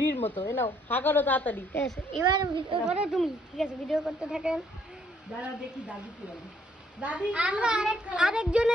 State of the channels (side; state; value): both; normal; correlation 0.68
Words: মতো। এ নাও খা করো তাড়াতাড়ি। ঠিক আছে, এবার ভিডিও করো তুমি। ঠিক আছে, ভিডিও করতে থাকেন। দাঁড়া দেখি দাদি কি বলে। দাদি আমরা